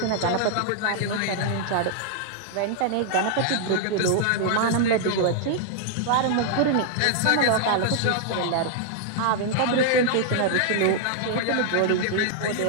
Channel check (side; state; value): both; different; correlation -0.01